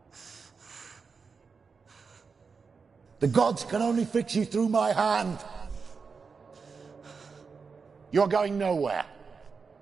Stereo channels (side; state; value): left; quieter; 5.2 dB